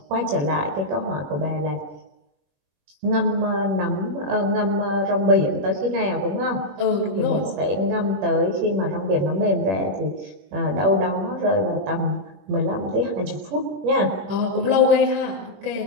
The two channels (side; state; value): left; late; 21 ms